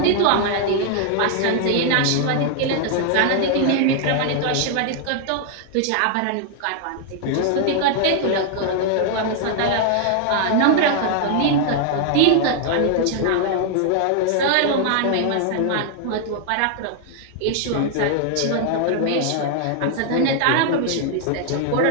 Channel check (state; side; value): different; both; correlation 0.00